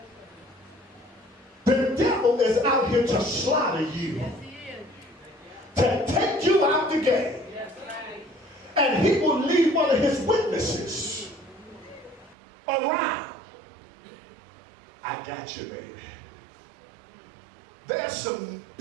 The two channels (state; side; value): drops out; left; at 12.4 s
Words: The devil is out here to slaughter you, Yes, he is. to take you out the game. Yes, right. And he will leave one of his witnesses around. I got you, baby. There's some